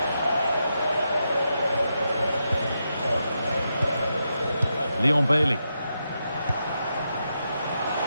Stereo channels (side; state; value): both; inverted; correlation -0.85